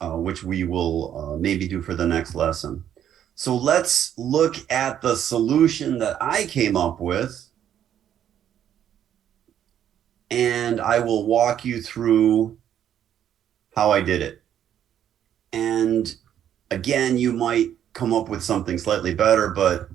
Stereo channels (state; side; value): quieter; left; 10.1 dB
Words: which we will maybe do for the next lesson. So let's look at the solution that I came up with. And I will walk you through how I did it. And again, you might come up with something slightly better, but